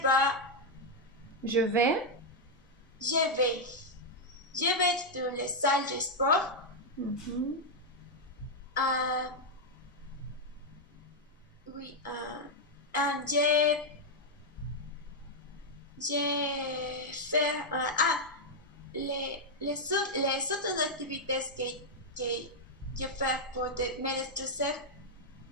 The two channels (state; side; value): normal; both; correlation -0.02